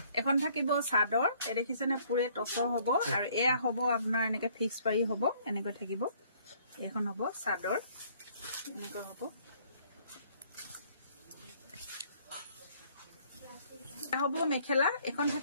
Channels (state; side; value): inverted; both; correlation -0.62